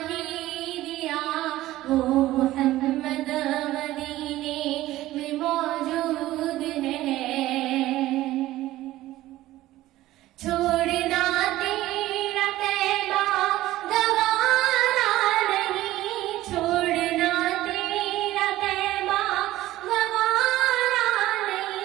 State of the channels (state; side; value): quieter; left; 15.8 dB